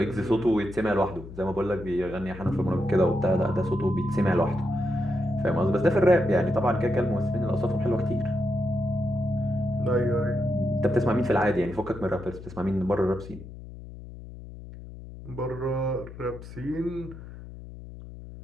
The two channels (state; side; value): noise; left; hum, 14 dB below the sound